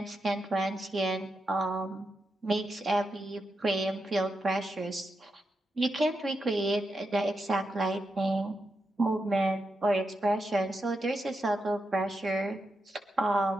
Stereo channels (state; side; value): normal; both; correlation 0.86